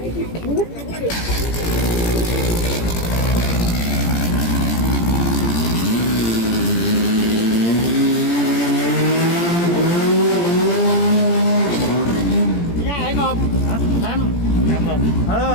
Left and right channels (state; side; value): late; right; 17 ms